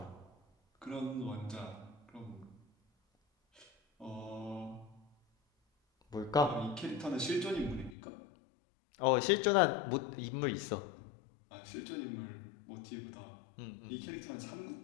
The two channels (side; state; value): right; drops out; at 8.0 s